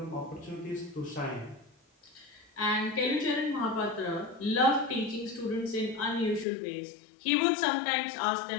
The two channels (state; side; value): drops out; right; at 6.5 s